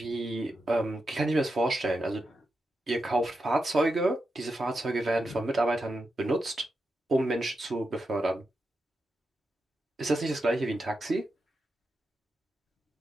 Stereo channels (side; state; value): both; normal; correlation 0.87